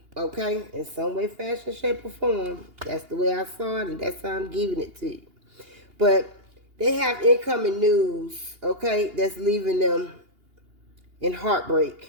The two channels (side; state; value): left; late; 2.8 ms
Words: okay, in some way, fashion, shape, or form. That's the way I saw it, and that's how I'm giving it to you. But they have incoming news, okay, that's leaving them in